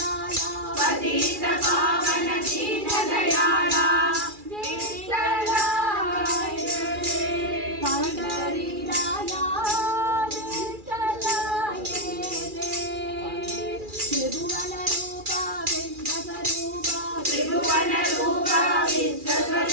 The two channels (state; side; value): late; left; 2.4 ms